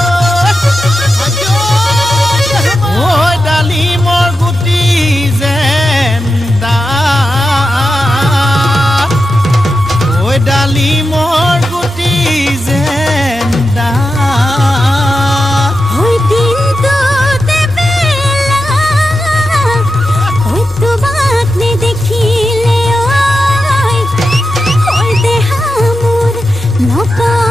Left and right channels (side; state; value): both; normal; correlation 0.90